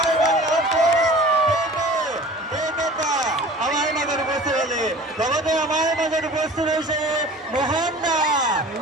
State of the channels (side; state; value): both; normal; correlation 0.42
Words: আমাৰ মাজত উপস্থিত হ'লে লগতে আমাৰ মাজত উপস্থিত হৈছে মোহন দা